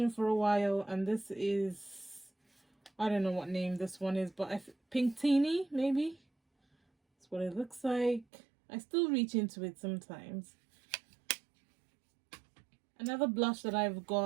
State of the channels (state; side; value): drops out; left; at 8.2 s